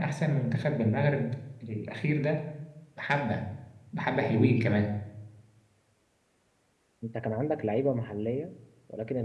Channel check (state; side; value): identical; both; correlation 1.00